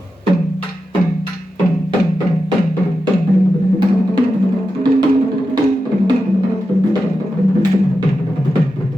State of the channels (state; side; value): normal; both; correlation 0.90